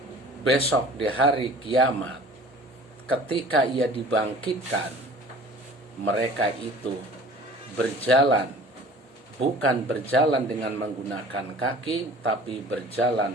besok di hari kiamat ketika ia dibangkitkan, mereka itu berjalan, bukan berjalan dengan menggunakan kaki, tapi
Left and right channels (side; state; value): both; normal; correlation 0.46